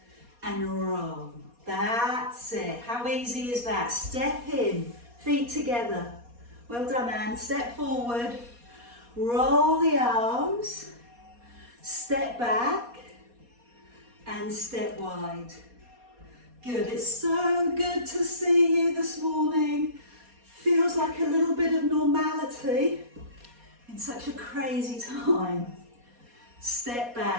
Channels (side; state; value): left; late; 4.2 ms